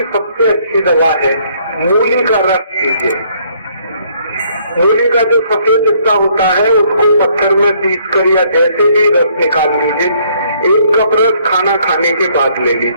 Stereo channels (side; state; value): both; inverted; correlation -0.66